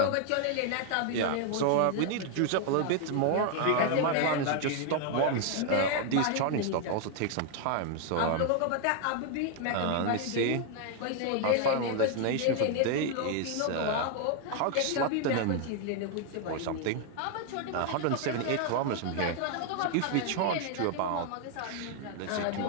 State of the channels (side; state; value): both; different; correlation 0.00